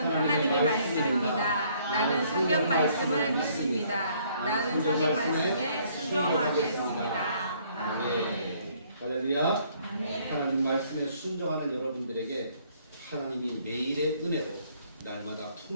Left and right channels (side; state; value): both; inverted; correlation -0.64